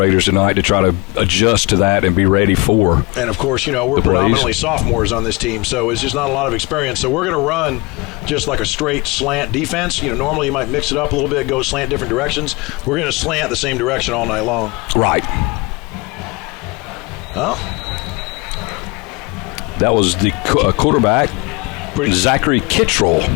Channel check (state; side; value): quieter; right; 26.2 dB